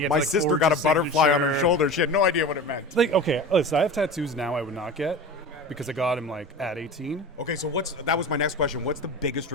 had My like sister forged got a his butterfly on her signature. shoulder. She had no idea what it meant. Like, okay, listen, I have tattoos now I would not get because I got him like at 18. Okay, so that was my next question. What's the biggest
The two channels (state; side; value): normal; both; correlation 0.31